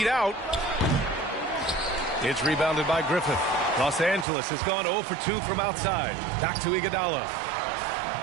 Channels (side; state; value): left; drops out; at 4.2 s